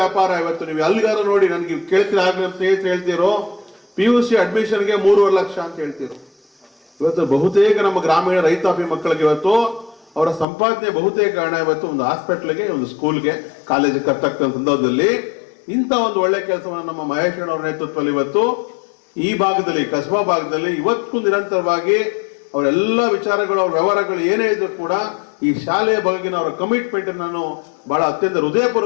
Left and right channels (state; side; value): drops out; right; at 10.5 s